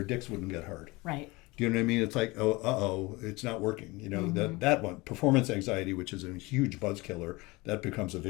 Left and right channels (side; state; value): right; quieter; 23.3 dB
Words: dicks wouldn't get hard. Right. Do you know what I mean? It's like, it's not working. That one, performance anxiety, which is a huge buzz killer, that becomes a